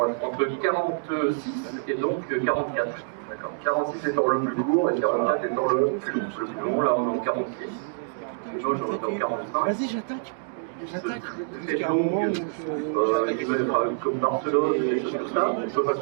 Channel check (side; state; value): left; silent; digital silence